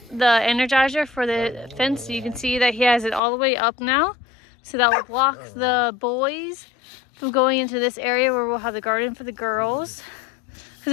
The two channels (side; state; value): right; drops out; at 3.2 s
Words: the energizer for the fence. So you can see that he has it all the way up now. So that will block the boys from going into this area where we'll have the garden for the girls.